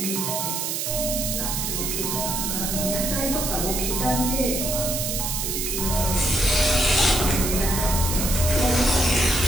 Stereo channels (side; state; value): right; noise; hiss, 2 dB below the sound